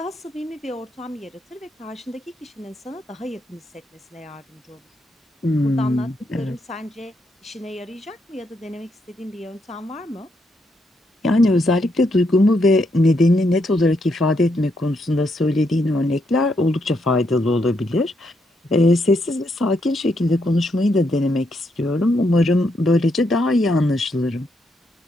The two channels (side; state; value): both; normal; correlation 0.78